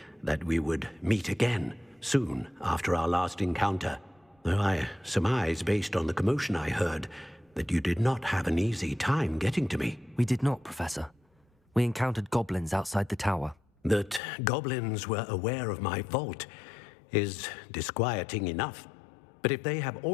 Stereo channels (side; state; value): right; drops out; at 14.2 s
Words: that we would meet again soon after our last encounter, though I surmise, based on the commotion I heard, that you did not have an easy time getting to me. We did not, Professor. We encountered goblins outside the tower. That goblins were aware of my vault is disquieting enough. But if they have